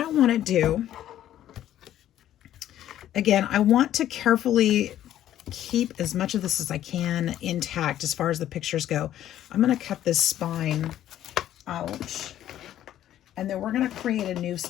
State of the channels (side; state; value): right; quieter; 12.0 dB